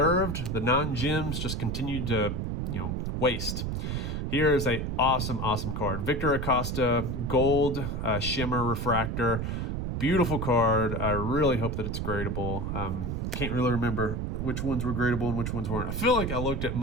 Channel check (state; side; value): noise; right; rumble, 2 dB below the sound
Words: The non-gems just continue to waste. Here is a awesome card. Victor Acosta, gold shimmer refractor. Beautiful card. I really hope that it's gradable. Can't really remember which ones were gradable and which ones weren't. I feel like I looked at